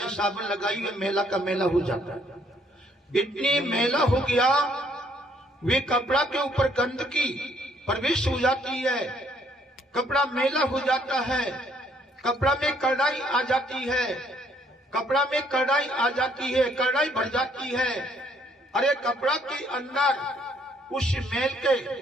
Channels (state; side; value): normal; both; correlation 0.66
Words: साबुन लगाई, वे मेला का मेला हो जाता है। इतनी मेला हो गया, वे कपड़ा के ऊपर गंदगी प्रवेश हो जाती है, कपड़ा मेला हो जाता है, कपड़ा में कड़ाई आ जाती है, कपड़ा में कड़ाई आ जाती है, कड़ाई भर जाती है। अरे कपड़ा के अंदर उस मेल के